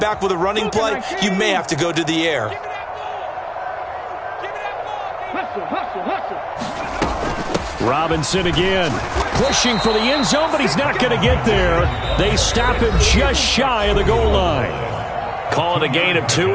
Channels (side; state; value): both; identical; correlation 1.00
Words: with a running play, you may have to go to the air. Robinson again, pushing for the end zone, but he's not going to get there. They stop him just shy of the goal line. Call it a gain of